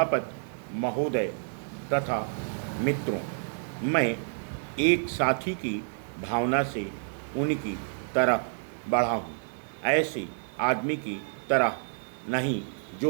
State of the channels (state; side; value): silent; left; digital silence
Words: महोदय तथा मित्रों, मैं एक साथी की भावना से उनकी तरफ बढ़ा हूँ, ऐसे आदमी की तरह नहीं जो